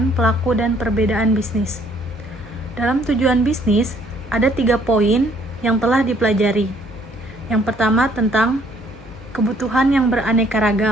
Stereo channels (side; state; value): both; normal; correlation 0.63